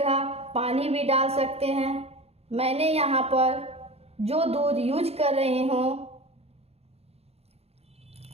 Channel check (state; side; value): late; left; 0.30 ms